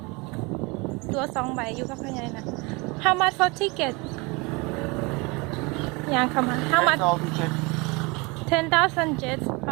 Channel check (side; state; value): left; quieter; 27.0 dB